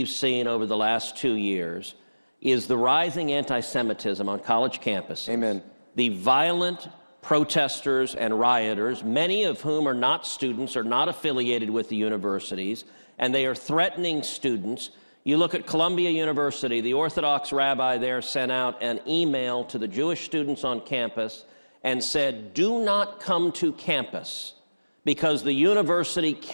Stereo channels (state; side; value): inverted; both; correlation -1.00